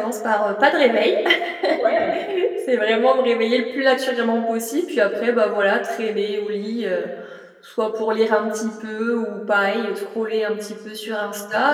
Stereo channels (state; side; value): identical; both; correlation 1.00